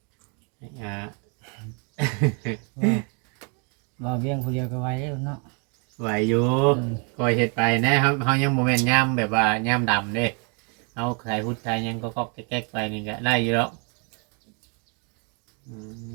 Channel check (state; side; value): quieter; left; 36.4 dB